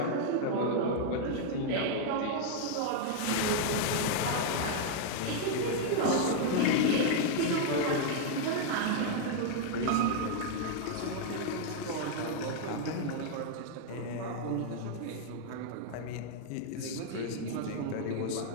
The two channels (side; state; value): both; different; correlation 0.00